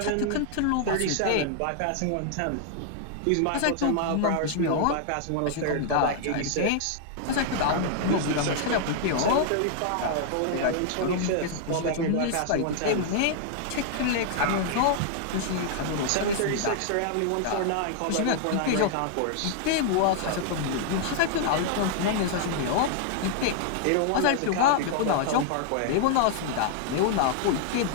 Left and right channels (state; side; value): different; both; correlation 0.00